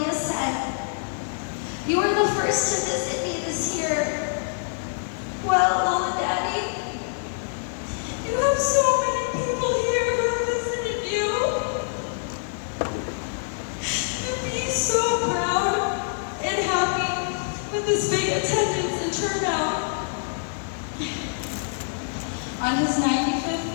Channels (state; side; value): silent; right; digital silence